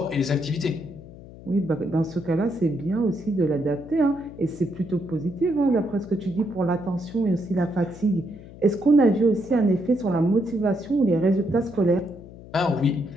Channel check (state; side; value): noise; left; hum, 17 dB below the sound